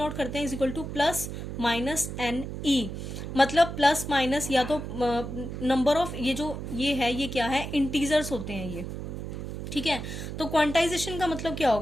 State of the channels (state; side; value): noise; right; hum, 7 dB below the sound